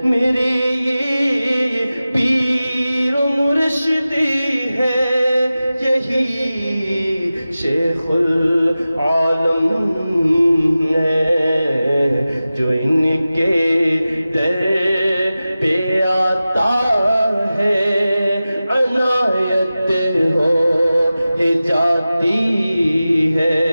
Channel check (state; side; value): inverted; both; correlation -0.95